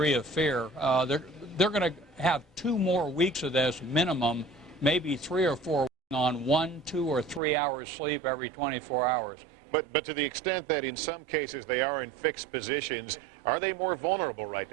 of fear. They're going to have 2 more weeks of this minimum, maybe 3 or 4 on 1, 2, or 3 hours sleep every 24 hours. But to the extent that in some cases they are in fixed positions, are they more vulnerable right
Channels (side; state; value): left; drops out; at 7.4 s